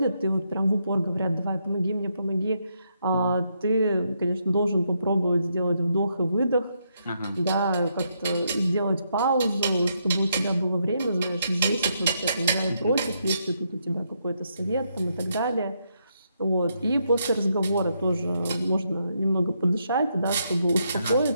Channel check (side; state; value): both; inverted; correlation -0.78